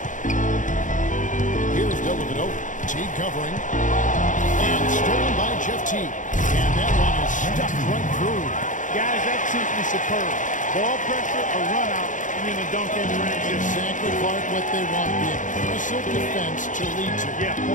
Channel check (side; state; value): right; late; 0.37 ms